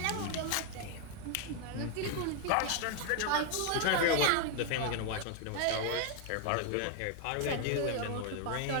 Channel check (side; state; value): both; different; correlation 0.00